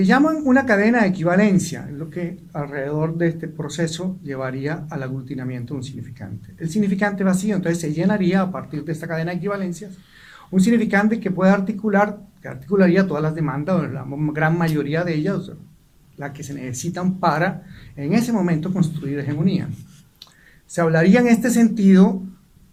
llaman una cadena de equivalencia es lo que alrededor de este proceso llevaría al aglutinamiento de un significante. El significante vacío entonces se llenaría a partir de esta cadena de equivalencias, un significante que puede articularía todas las demandas, o la gran mayoría de ellas, las que se necesitan para, en ese momento, construir hegemonía. Se hablaría en este sentido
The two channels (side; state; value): both; identical; correlation 1.00